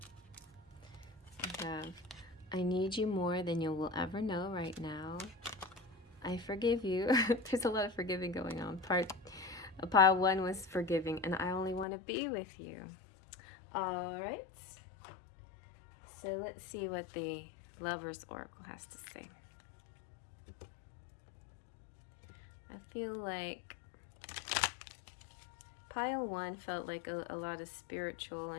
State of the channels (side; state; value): right; drops out; at 11.9 s